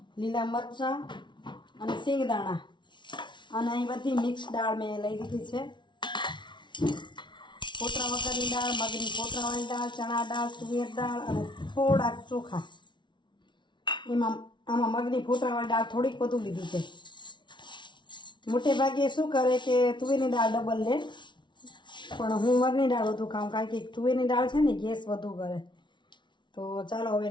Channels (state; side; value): late; right; 0.23 ms